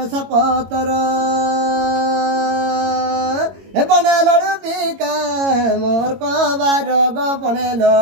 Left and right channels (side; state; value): left; late; 22 ms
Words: পতর বনে লড়ু বিকা মোর কবার গো বনে